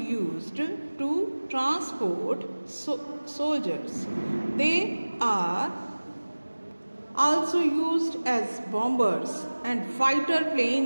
to transport soldiers. They are also used as bombers and fighter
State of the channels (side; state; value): both; inverted; correlation -1.00